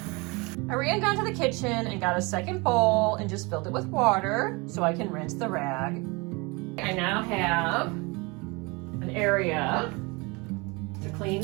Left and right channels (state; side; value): quieter; left; 27.1 dB